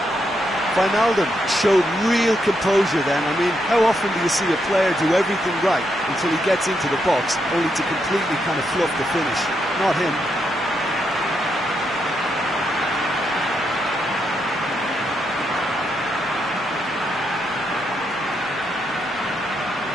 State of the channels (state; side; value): normal; both; correlation 0.80